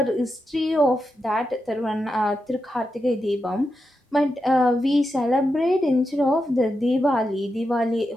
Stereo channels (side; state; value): both; normal; correlation 0.87